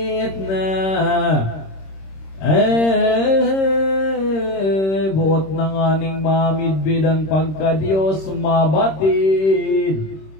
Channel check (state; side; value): late; right; 26 ms